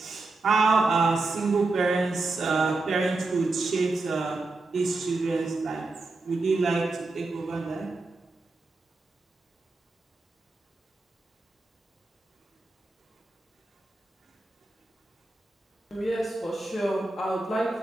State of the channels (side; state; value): left; quieter; 3.3 dB